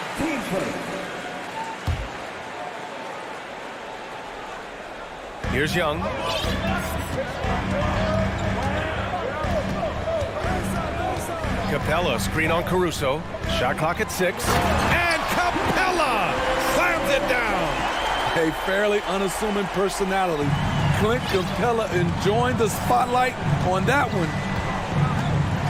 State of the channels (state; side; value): identical; both; correlation 1.00